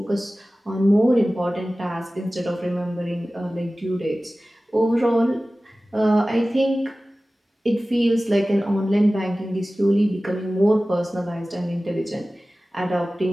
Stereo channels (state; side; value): normal; both; correlation 0.97